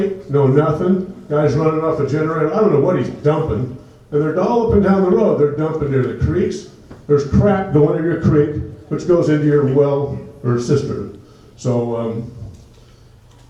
no nothing. Guy's running off a generator. I don't know what he's dumping. And they're all up and down the road. They're dumping near the creeks. There's crap going into your creek, which goes into your well or cistern. So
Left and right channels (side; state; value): both; identical; correlation 1.00